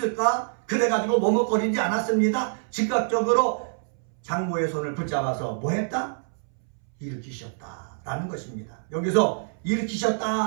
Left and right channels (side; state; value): left; silent; 61 dB below the other